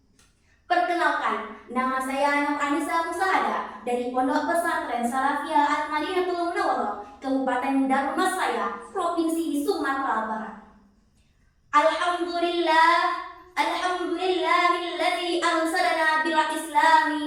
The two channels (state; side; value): identical; both; correlation 1.00